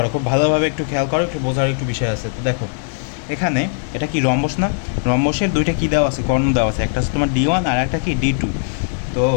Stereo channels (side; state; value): right; silent; digital silence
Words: খুব ভালোভাবে একটু খেয়াল করো, একটু বোঝার একটু বিষয় আছে। তো দেখো এখানে এটা কি রম্বস না? রম্বসের দুইটা কী দেওয়া আছে, কর্ণ দেওয়া আছে, একটা হচ্ছে তোমার D1 আর একটা কি D2। তো